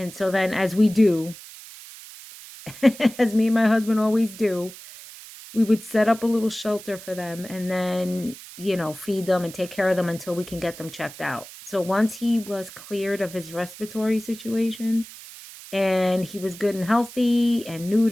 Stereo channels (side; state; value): right; noise; hiss, 16 dB below the sound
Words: so then, as we do, as me and my husband always do, we would set up a little shelter for them and then, feed them and take care of them until we can get them checked out. So once he was cleared of his respiratory situation and he was good and healthy and